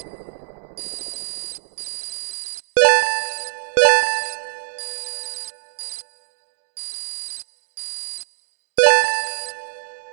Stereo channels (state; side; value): silent; left; digital silence